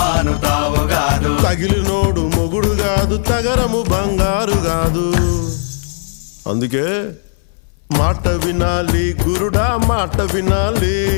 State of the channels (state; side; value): silent; right; 65 dB below the other